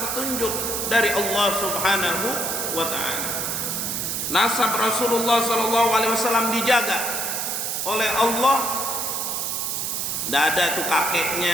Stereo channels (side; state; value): right; noise; hiss, 1 dB below the sound